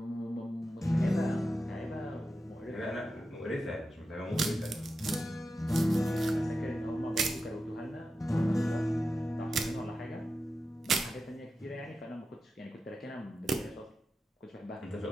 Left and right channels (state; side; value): normal; both; correlation 0.90